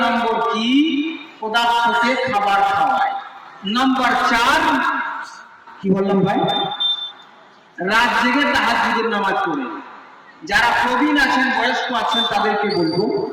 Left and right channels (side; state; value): both; identical; correlation 1.00